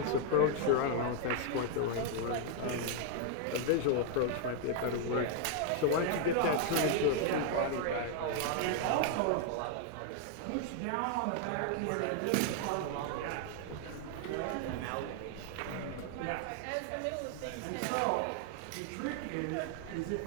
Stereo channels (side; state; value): both; different; correlation 0.00